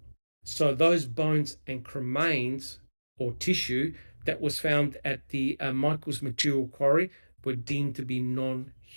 So those bones and cremains or tissue that was found at the Michaels Material Quarry were deemed to be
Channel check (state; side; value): inverted; both; correlation -1.00